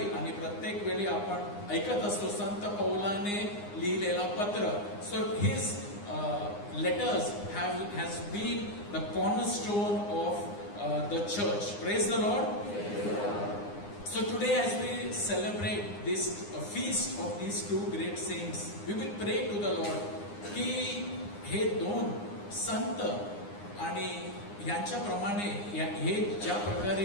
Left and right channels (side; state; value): right; late; 9.8 ms